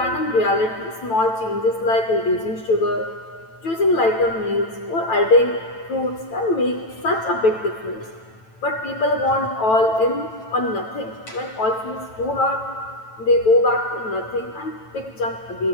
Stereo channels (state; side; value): late; right; 9.1 ms